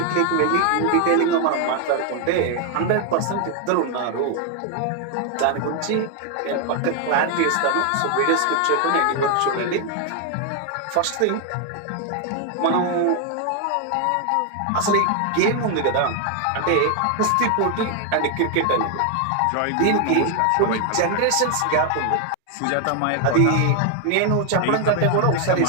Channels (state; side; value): different; both; correlation 0.00